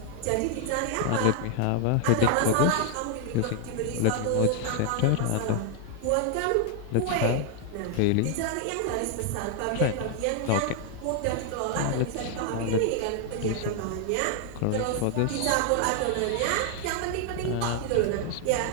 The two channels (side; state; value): both; different; correlation 0.00